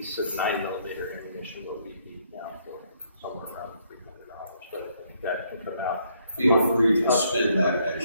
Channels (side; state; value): both; inverted; correlation -0.70